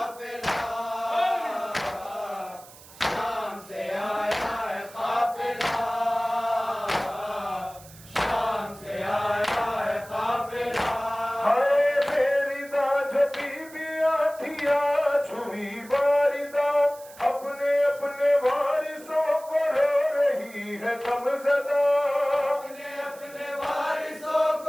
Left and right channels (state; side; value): noise; right; hiss, 21 dB below the sound